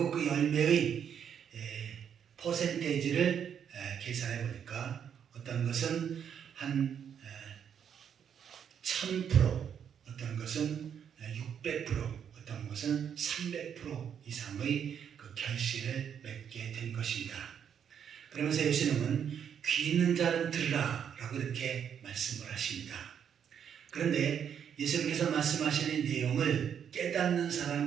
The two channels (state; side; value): quieter; left; 8.2 dB